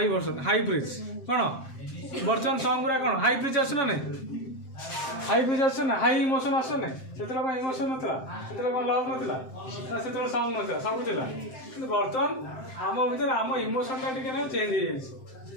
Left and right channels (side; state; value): right; late; 7.6 ms